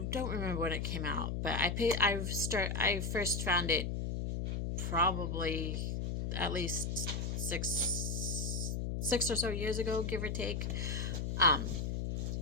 remember when it came out, but I first found it probably at least six or so years ago, give or take.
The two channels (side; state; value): left; noise; hum, 1 dB below the sound